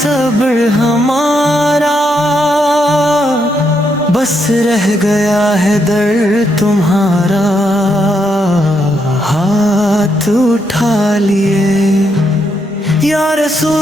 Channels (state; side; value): normal; both; correlation 0.78